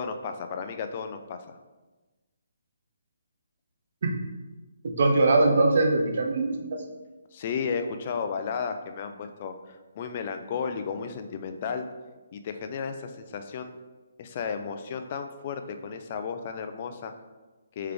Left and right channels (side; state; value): both; inverted; correlation -0.75